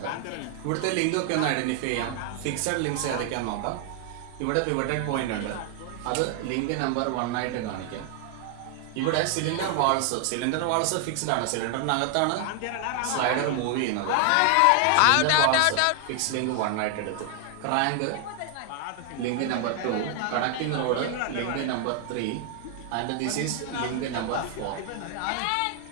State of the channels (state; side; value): different; both; correlation 0.00